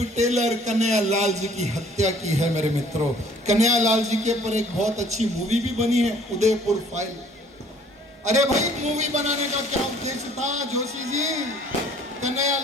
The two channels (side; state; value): both; normal; correlation 0.56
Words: टेलर कन्हैयालाल जी की हत्या की है। मेरे मित्रों, कन्हैयालाल जी के ऊपर एक बहुत अच्छी मूवी भी बनी है, उदयपुर फाइल। अरे भाई, मूवी बनाने का क्या उद्देश्य था जोशी जी?